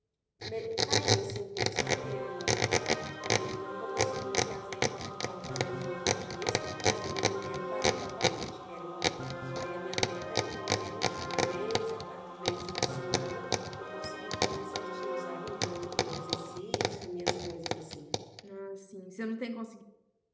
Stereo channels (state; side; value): identical; both; correlation 1.00